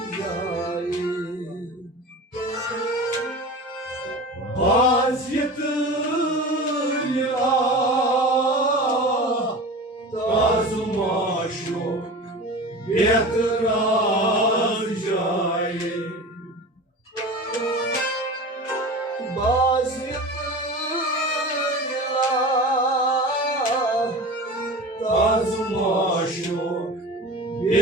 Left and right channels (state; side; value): normal; both; correlation 0.33